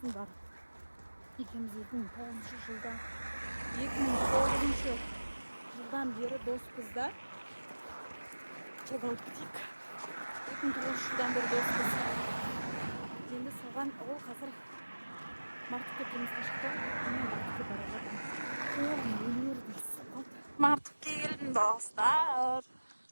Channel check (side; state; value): both; inverted; correlation -1.00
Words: бар. Екеуміз 2009 жылдан бері доспыз да. Жоғалып кетейік. 2009 жылдан бері доспыз. Енді соған ол қазір Мартукке тұрмысқа шықты. Мен Мартукке бара жатырмын. Мартукке келдім достар.